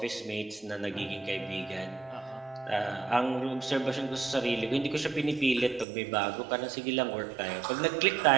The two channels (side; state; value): left; drops out; at 5.9 s